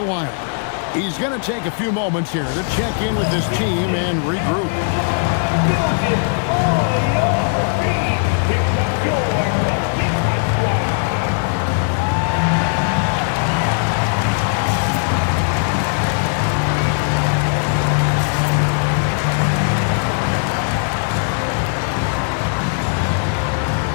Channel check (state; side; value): silent; right; 64 dB below the other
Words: He's going to take a few moments here to check in with his team and regroup.